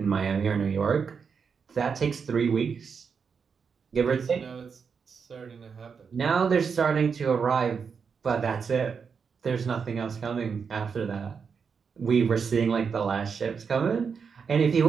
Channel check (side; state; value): left; quieter; 6.0 dB